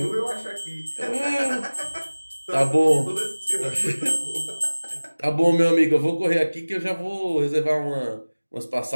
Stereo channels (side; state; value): both; inverted; correlation -1.00